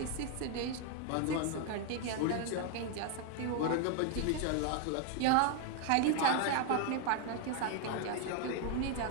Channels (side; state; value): both; different; correlation 0.01